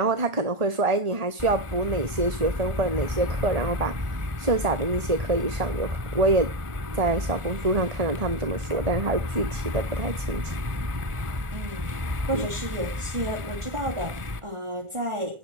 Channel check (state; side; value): late; left; 1.5 ms